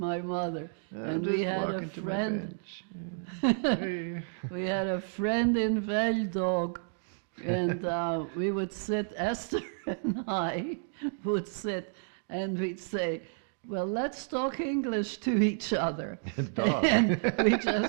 mother. And we had a friend, we had a friend in Veldog, and we would sit, Esther and I would sit, and we'd say, well, let's talk English to each other. And we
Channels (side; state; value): left; silent; digital silence